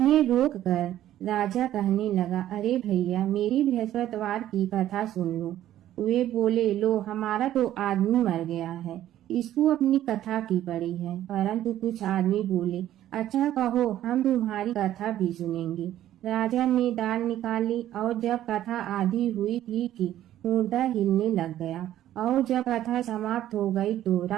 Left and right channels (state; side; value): quieter; left; 12.7 dB